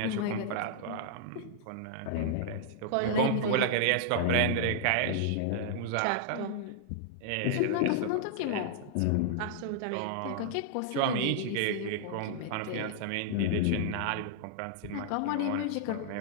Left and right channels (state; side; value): different; both; correlation -0.01